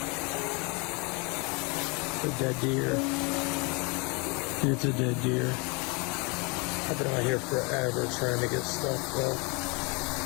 A dead deer. It's a dead deer. I've been out here forever trying to get stuff though.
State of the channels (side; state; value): right; quieter; 30.3 dB